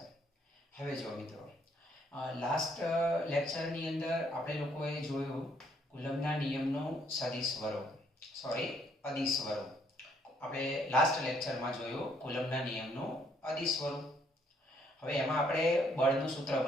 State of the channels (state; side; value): normal; both; correlation 0.68